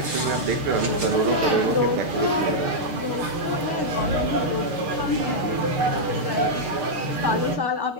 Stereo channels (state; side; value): late; left; 6.6 ms